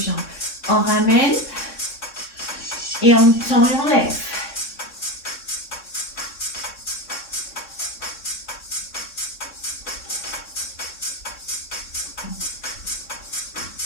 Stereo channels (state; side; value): late; right; 3.6 ms